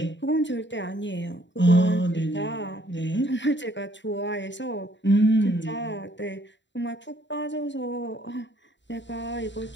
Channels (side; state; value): right; late; 0.53 ms